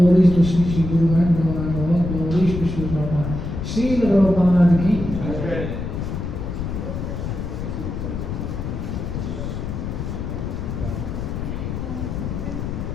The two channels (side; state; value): left; noise; rumble, 4 dB below the sound